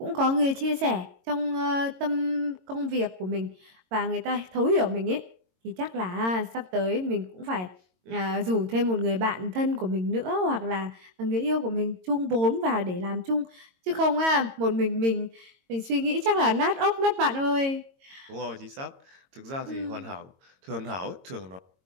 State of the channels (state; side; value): late; left; 22 ms